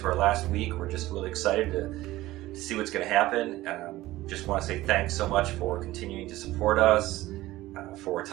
our last week. We're just really excited to see what's going to happen. Just want to say thanks so much for continuing to support us, for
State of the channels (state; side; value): quieter; left; 16.9 dB